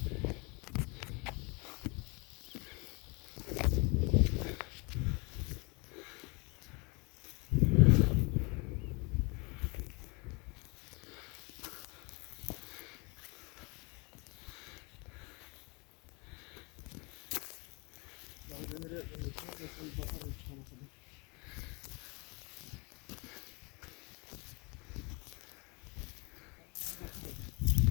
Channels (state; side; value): quieter; right; 29.7 dB